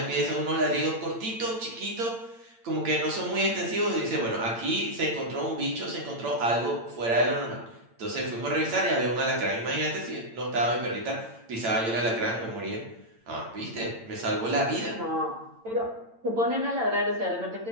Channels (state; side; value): late; left; 8.8 ms